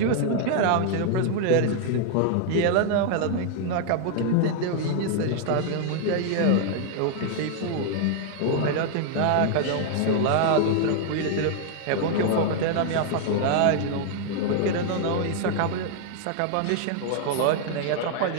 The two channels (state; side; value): different; both; correlation 0.00